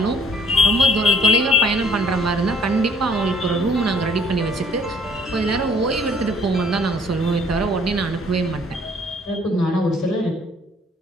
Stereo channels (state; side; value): normal; both; correlation 0.60